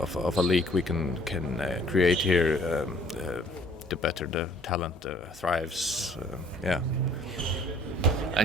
a league we can create here, the better the talent thrives.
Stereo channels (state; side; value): normal; both; correlation 0.58